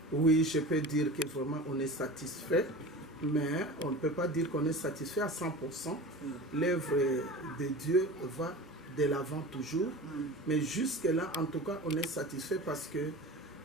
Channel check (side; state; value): both; normal; correlation 0.34